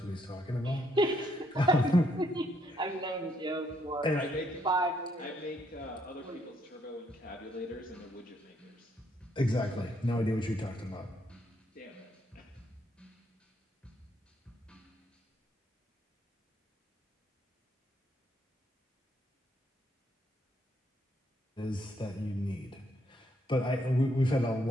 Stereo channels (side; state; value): both; normal; correlation 0.72